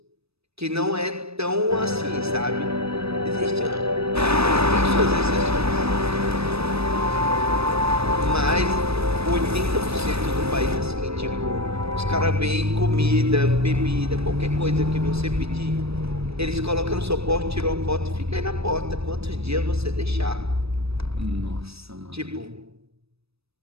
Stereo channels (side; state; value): left; late; 0.78 ms